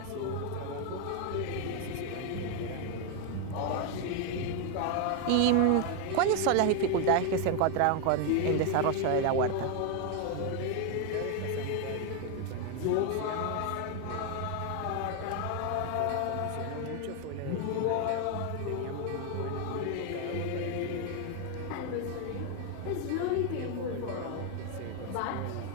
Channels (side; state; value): both; different; correlation 0.01